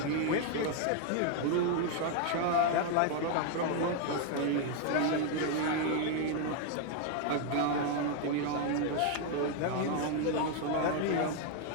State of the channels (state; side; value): different; both; correlation 0.00